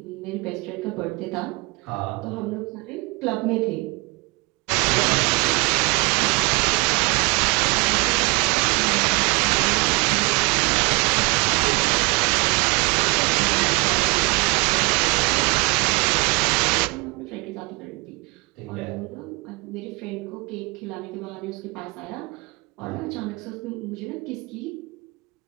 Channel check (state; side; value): quieter; left; 27.5 dB